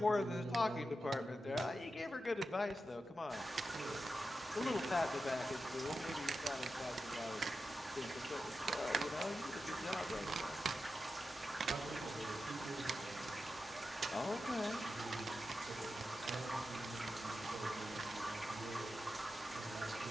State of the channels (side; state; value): both; normal; correlation 0.90